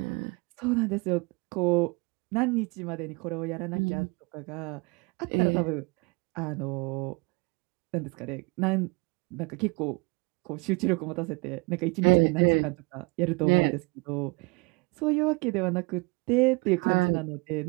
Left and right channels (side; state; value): left; quieter; 28.3 dB